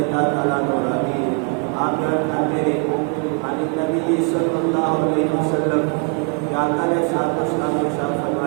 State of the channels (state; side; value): quieter; left; 38.0 dB